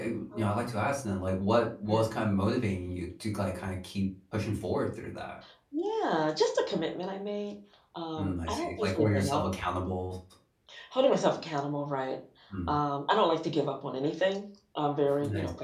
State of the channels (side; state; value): both; identical; correlation 1.00